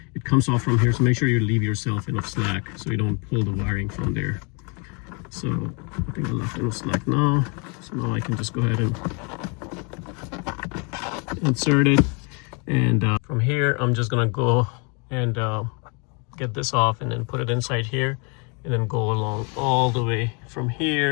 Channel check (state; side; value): quieter; right; 34.1 dB